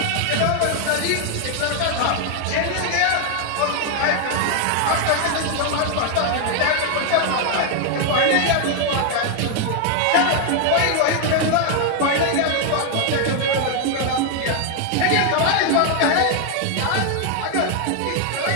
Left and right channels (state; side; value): different; both; correlation 0.00